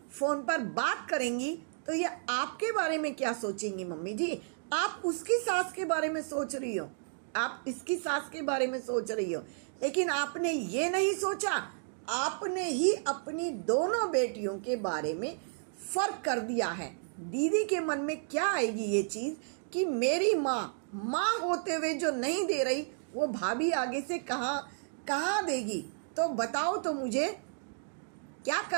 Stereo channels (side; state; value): left; silent; digital silence